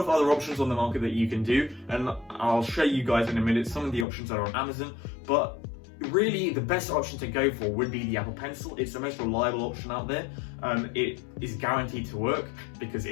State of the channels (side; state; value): right; drops out; at 4.0 s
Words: other options on the market that you can do, and I'll show you guys in a minute some of the options that are on Amazon, but really the best option to go for would be the Apple Pencil. It's the most reliable option out there. It is guaranteed to work because